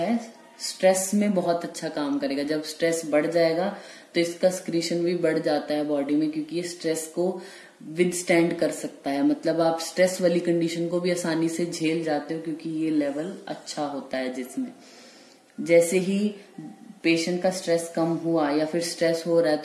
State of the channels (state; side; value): identical; both; correlation 1.00